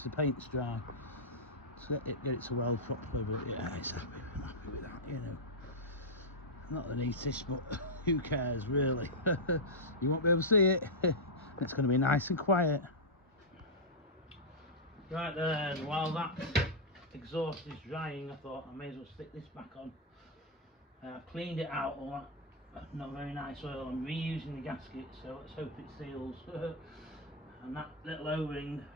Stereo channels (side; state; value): both; normal; correlation -0.06